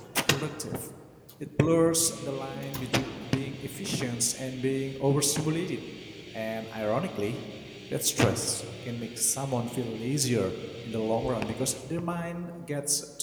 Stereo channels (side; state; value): both; identical; correlation 1.00